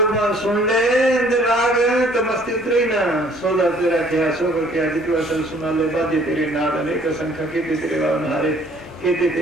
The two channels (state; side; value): normal; both; correlation 0.58